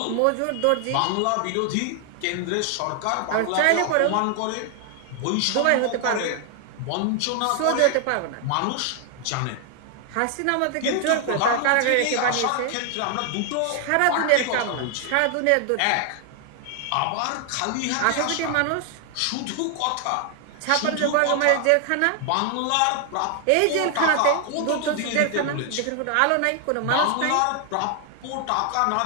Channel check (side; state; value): both; different; correlation 0.00